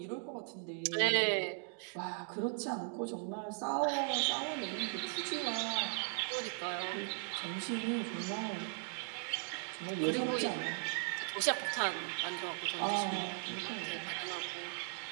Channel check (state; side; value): silent; left; 52 dB below the other